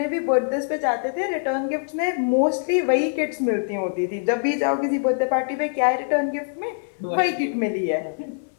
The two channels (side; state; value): right; silent; digital silence